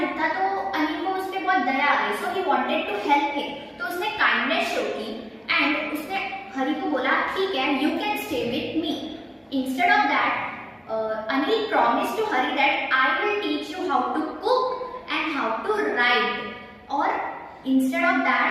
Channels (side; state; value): both; identical; correlation 1.00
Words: लुक था। तो अनिल को उस पर बहुत दया आ गई, so he wanted to help him. तो उसने काइंडनेस शो की एंड उसने हरि को बोला ठीक है, you can stay with me. Instead of that Anil promised to Hari that I will teach you how to cook and how to ride. और instead of